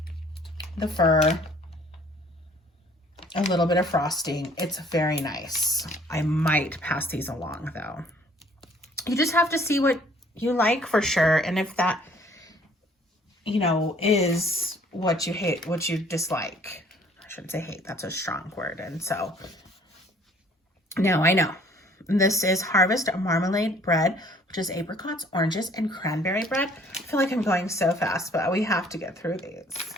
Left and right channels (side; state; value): both; normal; correlation 0.58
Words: the fir. a little bit of frosting. It's very nice. I might pass these along though. You just have to see what you like for sure. And if that, you know, is what you hate, what you dislike. I shouldn't say hate, that's a strong word. And so, now I know. This is Harvest Marmalade Bread, which is apricots, oranges, and cranberry bread. I feel like I'm going so fast, but we have to get through these.